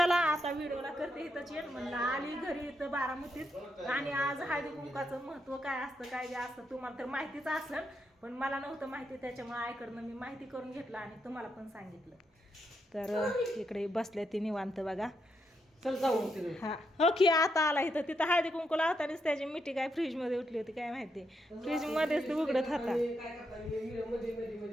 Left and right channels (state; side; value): normal; both; correlation 0.81